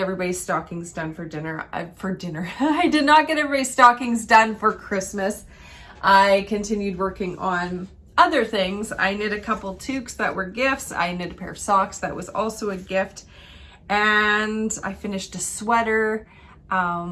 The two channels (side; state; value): both; identical; correlation 1.00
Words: stockings done for dinner. I did not get everybody's stockings done for Christmas. I continued working on other things. I knit a couple toques that were gifts. I knit a pair of socks that was also a gift. And I finished a sweater.